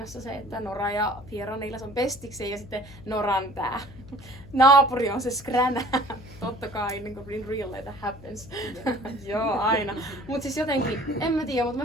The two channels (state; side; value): noise; left; hum, 19 dB below the sound